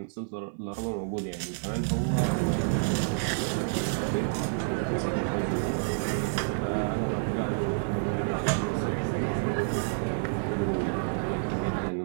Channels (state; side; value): silent; left; digital silence